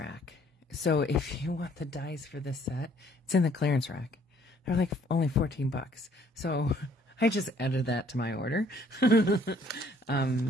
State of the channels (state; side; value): normal; both; correlation 0.61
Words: So if you want the dies for this set, it's in the clearance rack. They're like only $14. So I just added that to my order,